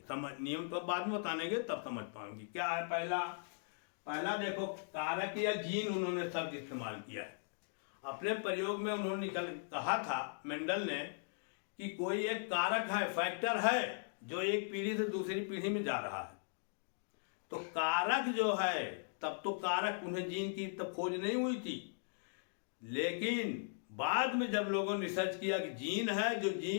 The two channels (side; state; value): right; silent; digital silence